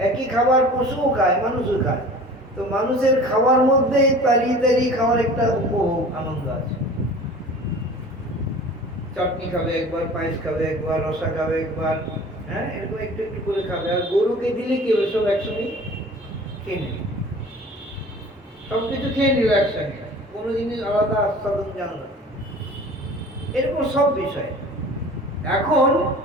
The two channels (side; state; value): both; normal; correlation 0.43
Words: একই খাবার পশুও খায়, মানুষও খায়। তো মানুষের খাওয়ার মধ্যে তাড়িয়ে তাড়িয়ে খাওয়ার একটা উপভোগ আনন্দ আছে। চাটনি খাবে একবার, পায়েস খাবে একবার, রসা খাবে একবার, হ্যাঁ, এরকম একটু একটু করে খাবে। আর গরুকে দিলে কি হবে? সব একসঙ্গে খেয়ে নেবে, সবকিছু খেয়ে নিল একসঙ্গে, কোনো জিনিস আলাদা আস্বাদন জানো না। এরকম সব বিষয়। এখন